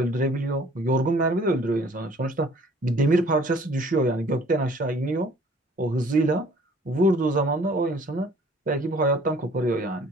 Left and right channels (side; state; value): both; normal; correlation 0.55